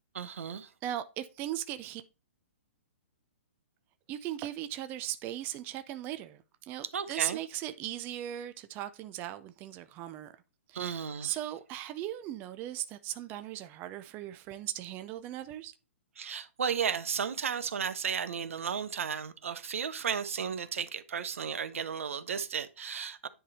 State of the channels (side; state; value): left; quieter; 8.2 dB